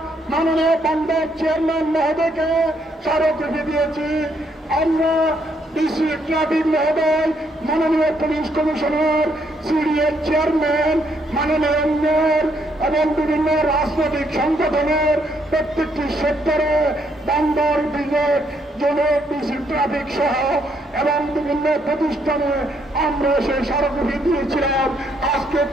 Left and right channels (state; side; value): normal; both; correlation 0.72